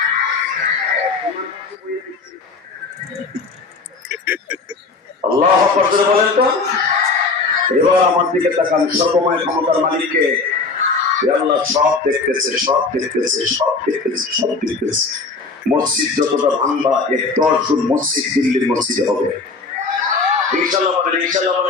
আল্লাহু আকবার জোরে বলেন তো। এবার আমার দিকে তাকান, সর্বময় ক্ষমতার মালিককে। আল্লাহ সব দেখতেছে, সব দেখতেছে, সব দেখতেছে, সব দেখতেছে। মসজিদ যতটা ভাঙবা, 10 গুণ মসজিদ দিল্লির মসজিদে হবে। ইনশাআল্লাহ বলেন, ইনশাআল্লাহ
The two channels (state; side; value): quieter; right; 4.1 dB